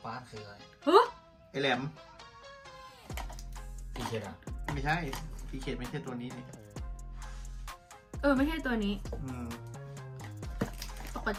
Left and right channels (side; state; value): both; identical; correlation 1.00